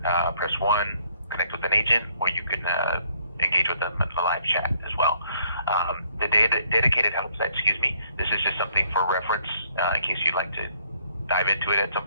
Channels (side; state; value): both; inverted; correlation -0.65